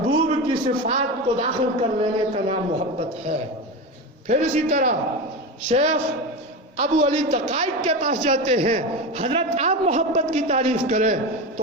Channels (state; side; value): normal; both; correlation 0.21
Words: کی صفات کو داخل کر لینے کا نام محبت ہے. پھر اسی طرح شیخ ابو علی تقائق کے پاس جاتے ہیں، حضرت آپ محبت کی تعریف کریں.